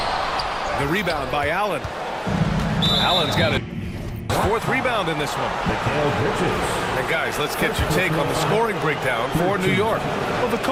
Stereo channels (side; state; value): both; identical; correlation 1.00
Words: The rebound by Allen. Allen's got a 4th rebound in this one. And guys, let's get your take on the scoring breakdown for New York. Well, the